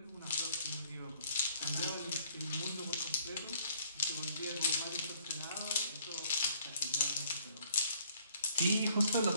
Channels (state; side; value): inverted; both; correlation -0.61